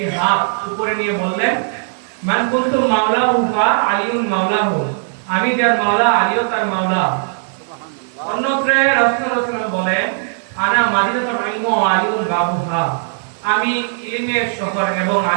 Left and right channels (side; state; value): left; silent; 60 dB below the other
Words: হাত উপরে নিয়ে বললেন, মান কুনতু মাওলাহু ফা আলিউন মাওলাহু, আমি যার মাওলা আলীও তার মাওলা। অন্যত্র রাসূল সাল্লাল্লাহু আলাইহি ওয়াসাল্লাম বলেন, আনা মাদিনাতুল ইলমি ওয়া আলিউন বাবুহা, আমি ইলমের শহর এবং